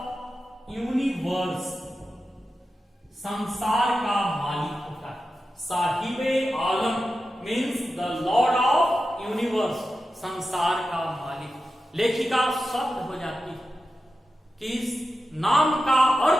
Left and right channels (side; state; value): both; normal; correlation 0.91